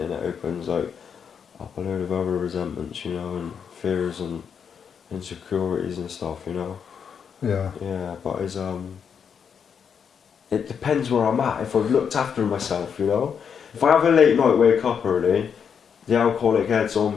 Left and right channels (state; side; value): quieter; right; 7.1 dB